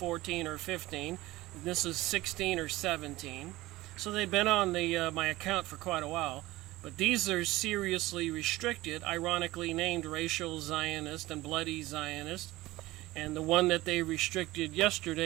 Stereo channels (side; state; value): left; quieter; 18.5 dB